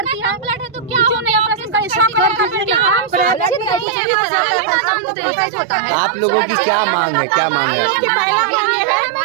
है। ब्लड है तो क्या होने आप लोगों की क्या मांग है, क्या मांग है आपकी?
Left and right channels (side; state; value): left; drops out; at 3.9 s